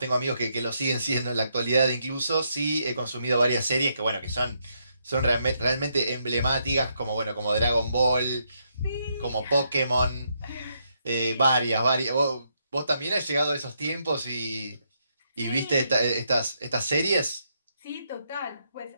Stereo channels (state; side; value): inverted; both; correlation -0.78